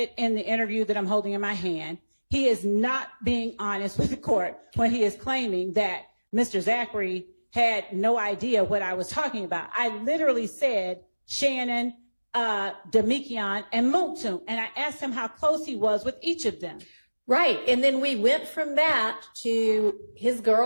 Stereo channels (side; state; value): both; inverted; correlation -1.00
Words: in the interview that I'm holding in my hand. He is not being honest with the court when he is claiming that Mr. Zachary had no idea what I was talking about. I literally said Shannon, Demikian, and Muktum, and I asked him how close he was with each of them. Right, and then we went from that to his